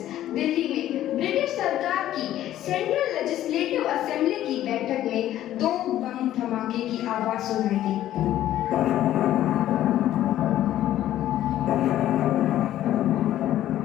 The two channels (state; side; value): quieter; right; 12.9 dB